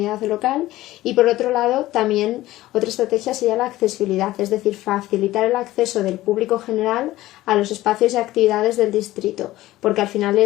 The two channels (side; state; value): right; quieter; 16.3 dB